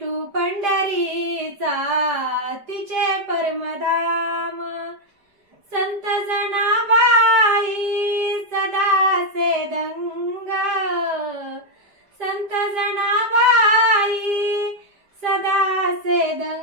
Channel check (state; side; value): late; left; 5.0 ms